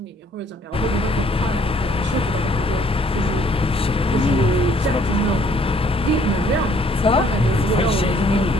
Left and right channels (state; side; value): normal; both; correlation 0.63